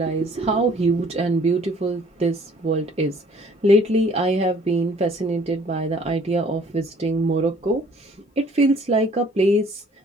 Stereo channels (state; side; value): normal; both; correlation 0.57